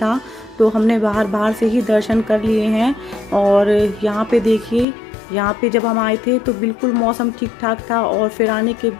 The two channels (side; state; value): right; drops out; at 4.9 s